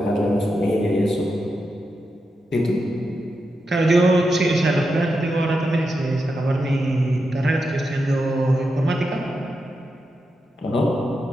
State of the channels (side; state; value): both; normal; correlation 0.87